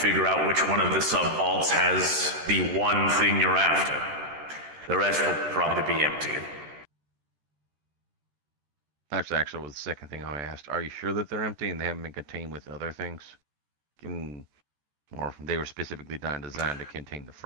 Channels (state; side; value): late; left; 13 ms